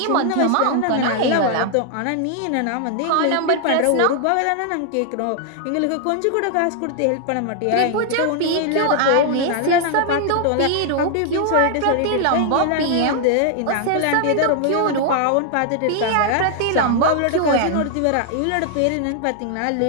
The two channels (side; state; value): both; different; correlation 0.00